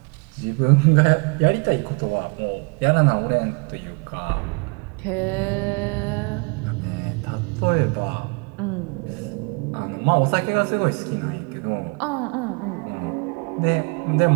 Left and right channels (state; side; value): quieter; left; 33.6 dB